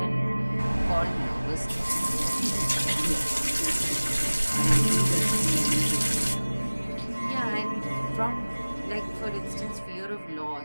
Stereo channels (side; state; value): both; inverted; correlation -1.00